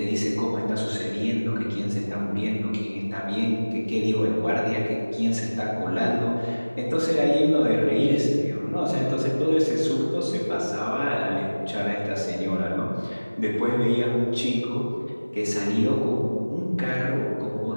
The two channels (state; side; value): inverted; both; correlation -1.00